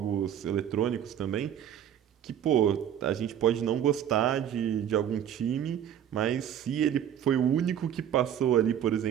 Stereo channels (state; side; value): quieter; left; 9.8 dB